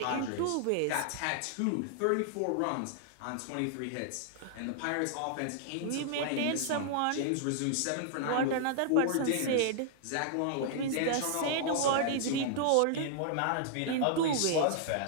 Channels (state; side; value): different; both; correlation -0.01